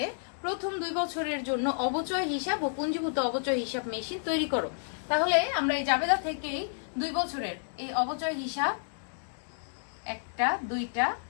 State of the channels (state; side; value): silent; right; 57 dB below the other